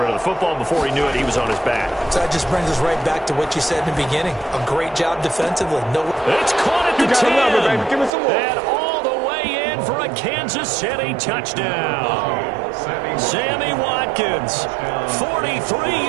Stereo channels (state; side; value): drops out; left; at 8.1 s